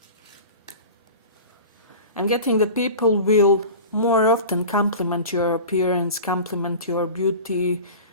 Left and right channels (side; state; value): both; inverted; correlation -0.35